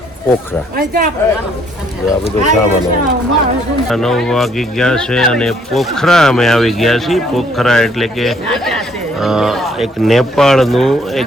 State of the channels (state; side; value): normal; both; correlation 0.65